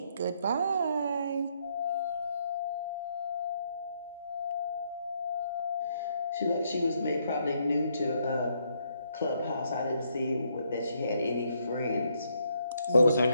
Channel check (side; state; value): both; inverted; correlation -0.73